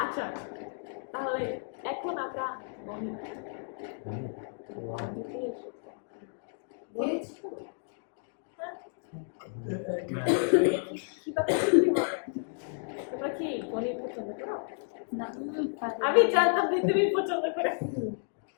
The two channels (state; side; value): silent; right; digital silence